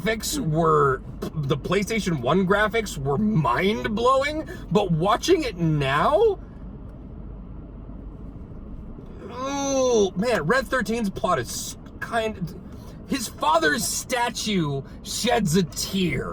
were, the PlayStation 1 graphics were mind-blowing, but watching it now, oh man, Red 13's plot is his father's statue sheds a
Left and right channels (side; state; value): both; identical; correlation 1.00